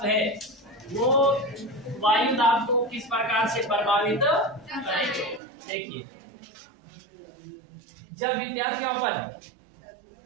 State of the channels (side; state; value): left; drops out; at 5.4 s